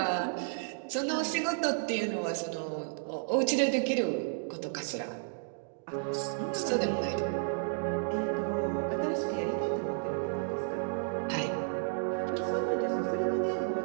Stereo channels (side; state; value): left; silent; digital silence